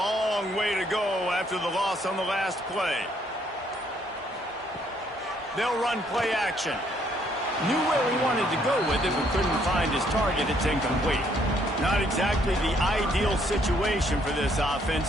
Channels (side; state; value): both; normal; correlation 0.68